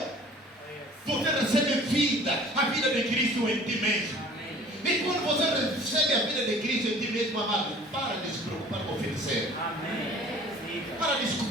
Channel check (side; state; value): both; normal; correlation 0.48